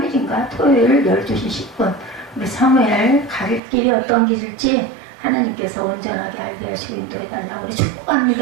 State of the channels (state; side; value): drops out; left; at 3.6 s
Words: 토요일 12시 10분 우리 사무엘 갈 길이 어떤 길일지 하나님께서 온전하게 알게 하시고 인도해달라고 우리